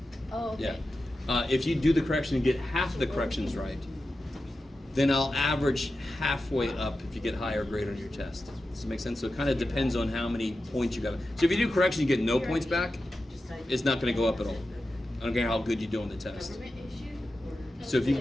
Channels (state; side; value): normal; both; correlation 0.91